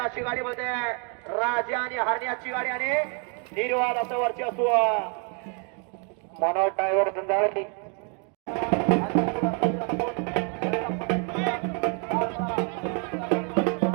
अशी गाडी बनते, राजा आणि हरण्याची गाडी आणि निर्वाद असं वर्चस्व. मनोज ड्रायव्हर धंदावली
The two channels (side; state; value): left; quieter; 38.6 dB